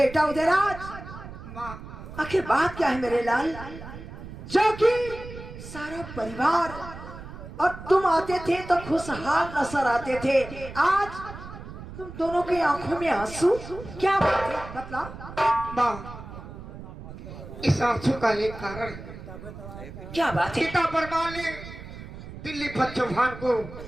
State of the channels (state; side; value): noise; right; rumble, 13 dB below the sound